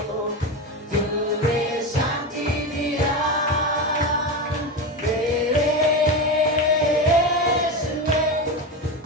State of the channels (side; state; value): both; normal; correlation 0.19